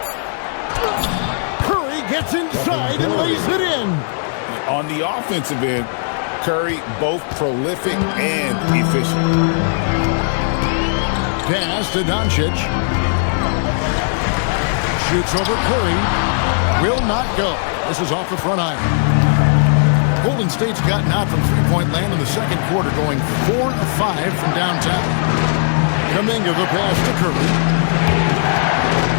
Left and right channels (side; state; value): right; silent; digital silence